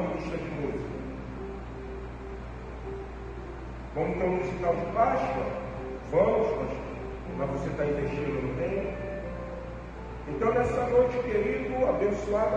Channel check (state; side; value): identical; both; correlation 1.00